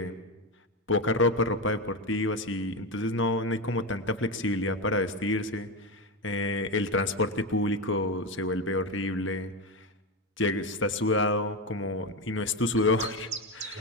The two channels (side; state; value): both; normal; correlation 0.15